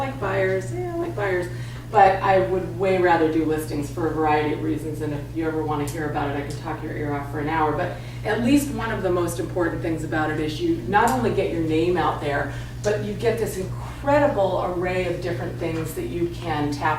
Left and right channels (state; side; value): identical; both; correlation 1.00